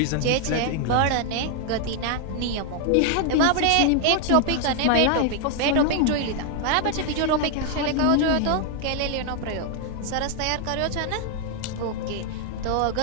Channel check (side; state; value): both; different; correlation 0.00